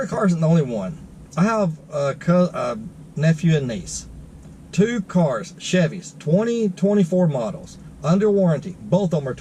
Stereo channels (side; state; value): both; identical; correlation 1.00